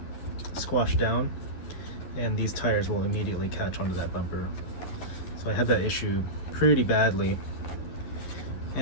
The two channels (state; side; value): late; right; 11 ms